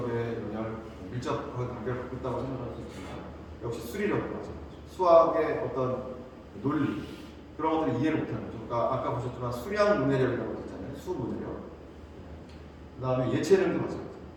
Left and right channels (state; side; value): identical; both; correlation 1.00